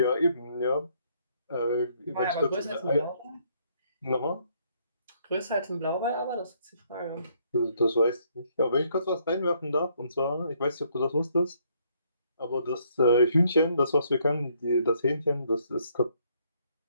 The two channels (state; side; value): inverted; both; correlation -0.69